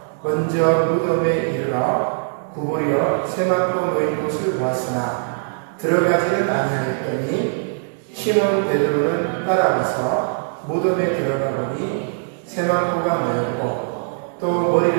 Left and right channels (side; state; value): left; silent; digital silence